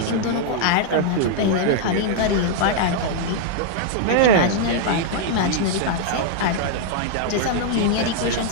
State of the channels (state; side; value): different; both; correlation -0.01